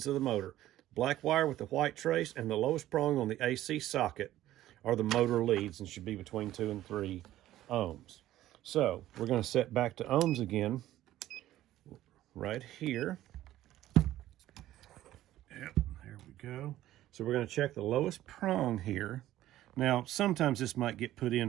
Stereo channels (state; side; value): quieter; left; 14.1 dB